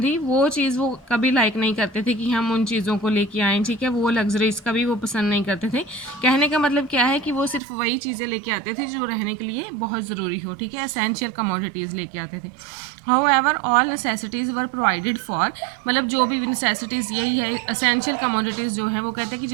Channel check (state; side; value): drops out; left; at 7.6 s